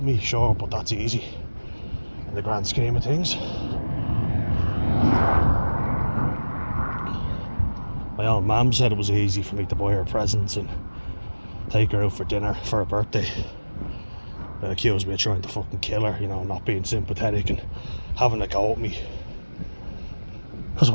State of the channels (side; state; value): both; inverted; correlation -1.00